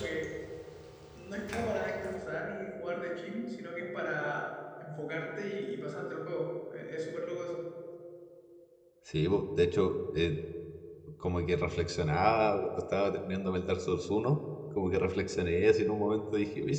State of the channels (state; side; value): identical; both; correlation 1.00